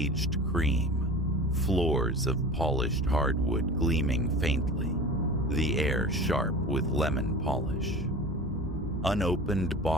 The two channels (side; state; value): both; normal; correlation 0.36